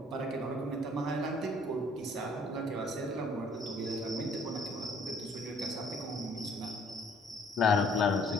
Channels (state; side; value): normal; both; correlation 0.60